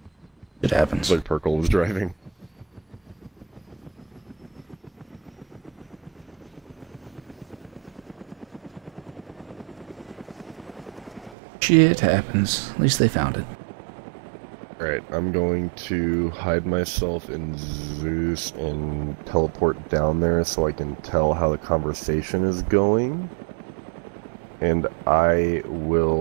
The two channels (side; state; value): left; drops out; at 11.4 s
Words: It happens. Like Perkle was driving. Shit happens. At least they found it. Alright, I'm going to hide myself in Zeus and teleport down there so I can tell how the conversation is going. And I